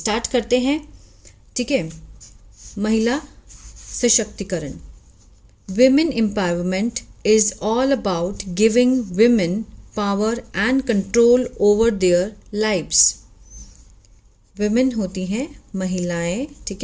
करते हैं। ठीक है, महिला सशक्तिकरण। Women empowerment is all about giving women power and control over their lives. women होती हैं महिलाएं। ठीक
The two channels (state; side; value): identical; both; correlation 1.00